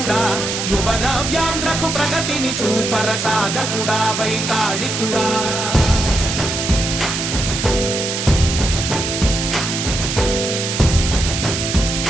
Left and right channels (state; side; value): noise; right; hiss, 3 dB below the sound